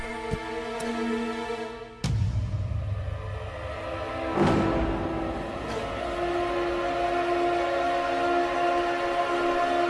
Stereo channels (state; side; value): identical; both; correlation 1.00